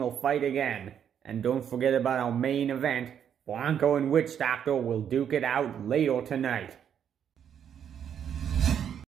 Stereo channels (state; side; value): quieter; left; 8.7 dB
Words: fight again. And don't forget about our main event, Bronco and Witch Doctor will duke it out later tonight.